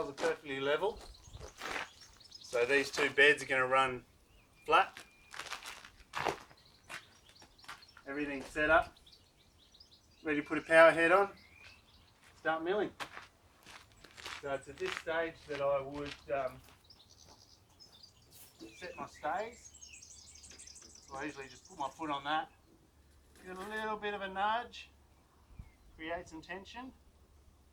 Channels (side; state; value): both; identical; correlation 1.00